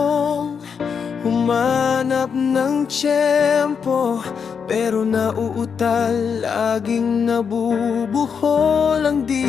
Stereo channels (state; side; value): quieter; right; 6.5 dB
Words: humanap ng tiyempo, pero nauutal, laging nabubuhol ang